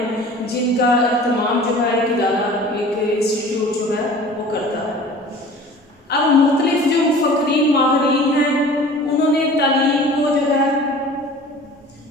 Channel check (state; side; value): normal; both; correlation 0.43